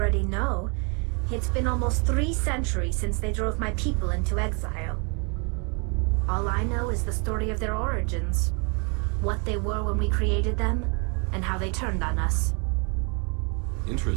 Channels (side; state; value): left; quieter; 35.5 dB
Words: know. It's been almost 3 centuries since they drove my people into exile. All I know is the story of their origins, what they were when we created them, and how they turned on us.